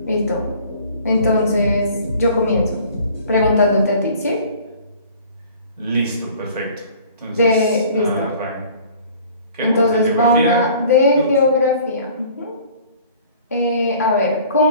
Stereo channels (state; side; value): inverted; both; correlation -0.49